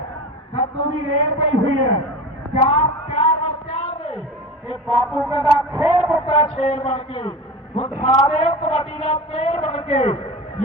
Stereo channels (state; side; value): normal; both; correlation 0.31